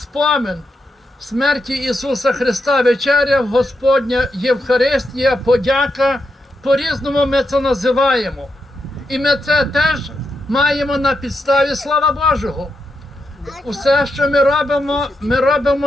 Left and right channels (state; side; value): normal; both; correlation 0.84